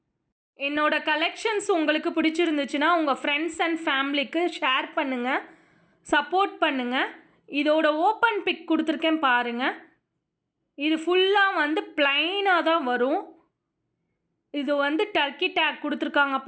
என்னோடய கலெக்ஷன்ஸ் உங்களுக்கு பிடிச்சிருந்துச்சுன்னா உங்கள் ஃப்ரெண்ட்ஸ் அண்ட் ஃபேமிலிக்கு ஷேர் பண்ணுங்கள், சப்போர்ட் பண்ணுங்கள். இதோட ஓப்பன் பிக் கொடுத்துருக்கேன் பாருங்கள். இது ஃபுல்லாக ப்ளைனாக தான் வரும். இது டர்க்கி டேக் கொடுத்துருக்காங்க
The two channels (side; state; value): both; identical; correlation 1.00